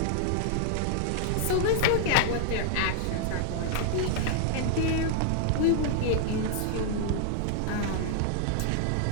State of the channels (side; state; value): both; different; correlation -0.01